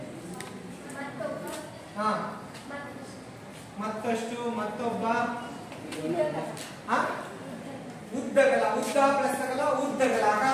ಮತ್ತಷ್ಟು, ಮತ್ತೊಬ್ಬ, ಉದ್ದಗಲ, ಉದ್ದ ಪ್ಲಸ್ ಅಗಲ, ಉದ್ದಗಲ,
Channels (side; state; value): both; identical; correlation 1.00